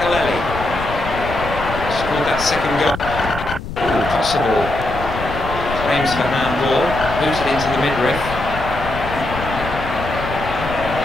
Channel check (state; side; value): noise; left; rumble, 8 dB below the sound